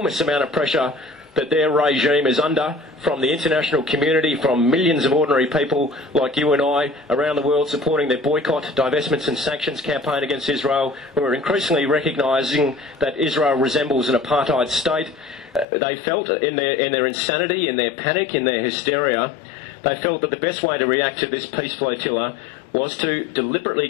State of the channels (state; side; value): drops out; right; at 15.7 s